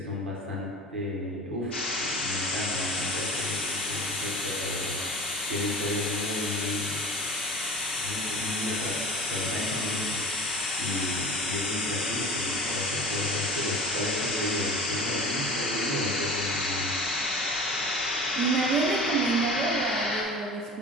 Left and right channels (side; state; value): both; normal; correlation 0.38